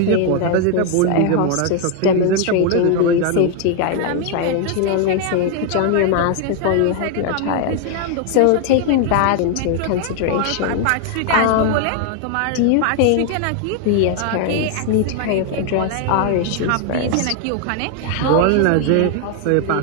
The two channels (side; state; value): both; different; correlation 0.00